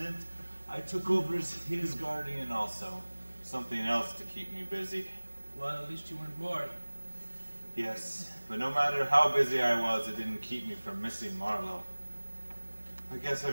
I took over as his guardian also. Something else to keep me busy. Well, at least you weren't bored. Yes, but no matter how busy I was, it didn't keep me from missing Marlowe. I guess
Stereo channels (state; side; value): inverted; both; correlation -1.00